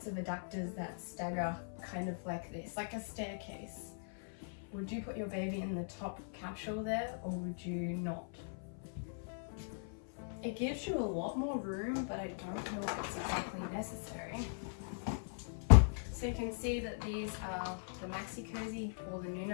of adapters that stagger kind of like this, like a staircase? Would you put your baby in the top capsule there or would you not? It gives you a lot more room, but I don't know if it's exactly necessary. So you can see that these are the Maxi Cozy or the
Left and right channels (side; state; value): right; silent; 51 dB below the other